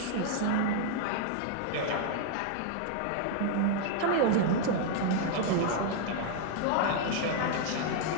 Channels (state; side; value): different; both; correlation 0.00